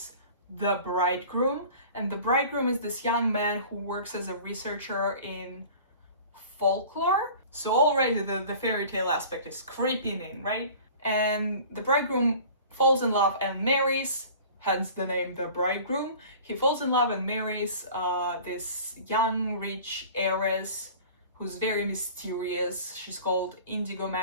the bridegroom. And the bridegroom is this young man who works as a researcher in folklore. So already the fairy tale aspect is creeping in, right? And the bridegroom falls in love and marries, hence the name the bridegroom. He falls in love and marries this young, rich heiress who's very mysterious. She's called Indigo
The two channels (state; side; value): inverted; both; correlation -0.43